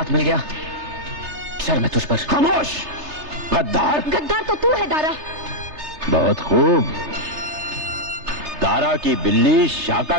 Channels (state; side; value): late; left; 3.3 ms